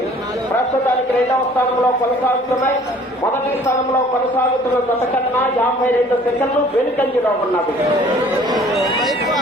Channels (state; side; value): normal; both; correlation 0.53